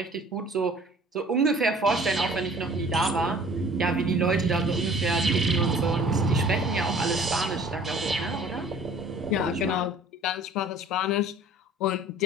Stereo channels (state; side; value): normal; both; correlation 0.50